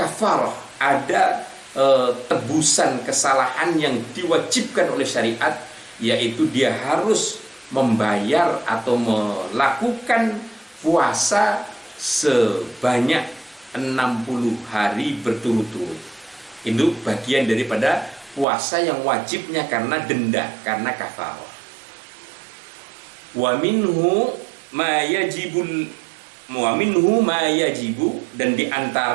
ada tebusan kesalahan yang diwajibkan oleh syariat, yaitu dia harus membayar atau melakukan puasa sebanyak 60 hari berturut-turut. Itu bagian daripada puasa yang wajibnya karena denda, karena kafarah. Wa minhu ma yajibu, dan di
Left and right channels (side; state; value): left; drops out; at 18.4 s